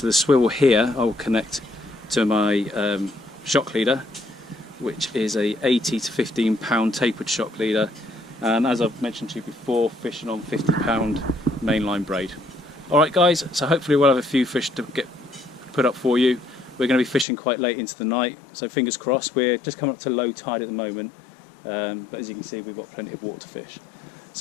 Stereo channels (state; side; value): drops out; right; at 17.2 s